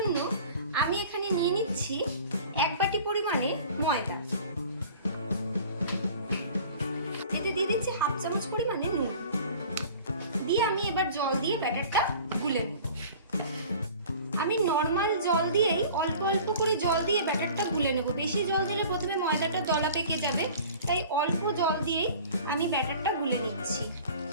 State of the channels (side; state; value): both; inverted; correlation -0.45